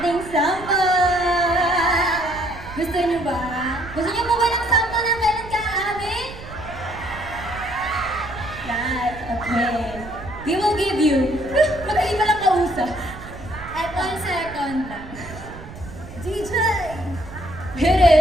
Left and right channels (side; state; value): right; noise; rumble, 14 dB below the sound